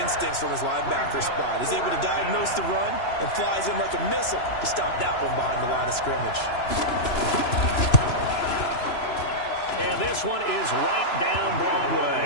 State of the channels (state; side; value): late; right; 3.0 ms